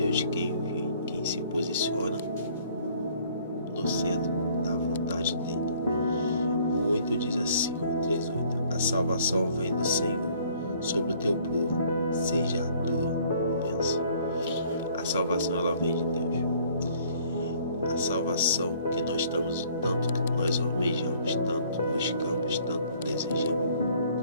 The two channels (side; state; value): both; inverted; correlation -0.58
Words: quem se posiciona no centro da vontade dele. O 8 diz assim, o 3:8: a salvação vem do Senhor sobre o teu povo, seja a tua bênção. A salvação, ela vem de Deus. A salvação que nós estamos, tanto que nós almejamos, tanto buscamos, tanto desejamos,